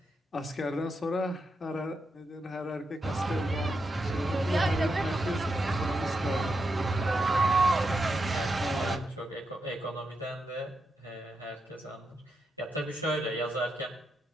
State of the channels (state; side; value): normal; both; correlation 0.85